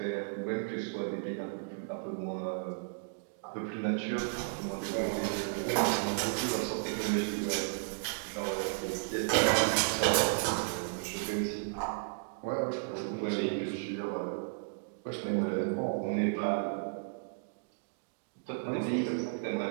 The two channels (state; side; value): silent; left; digital silence